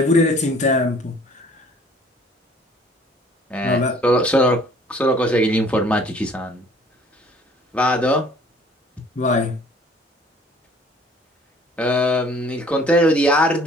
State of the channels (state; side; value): normal; both; correlation 0.55